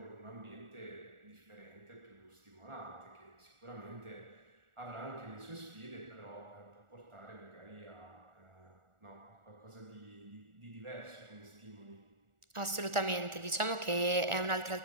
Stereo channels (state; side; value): late; left; 1.4 ms